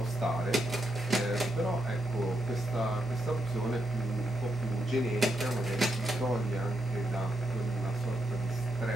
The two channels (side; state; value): both; normal; correlation 0.82